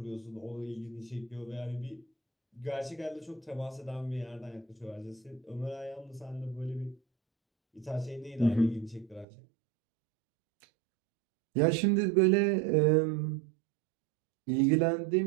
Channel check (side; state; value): left; drops out; at 9.2 s